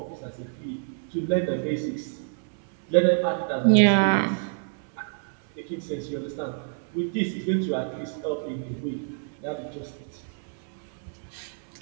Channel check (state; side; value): silent; left; 60 dB below the other